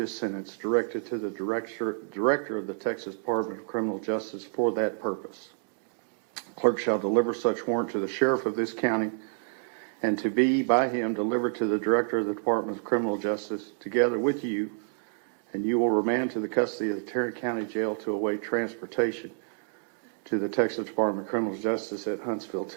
sentence directed to the director of the Texas Department of Criminal Justice for that purpose. Clerk shall deliver such warrant to the sheriff of this county and to be by him delivered to the director of the Department of Criminal Justice together with you, and you will remand to the custody of the Tarrant County Jail to await transportation to the Texas Department of Criminal Justice at Huntsville,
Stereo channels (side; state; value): left; silent; digital silence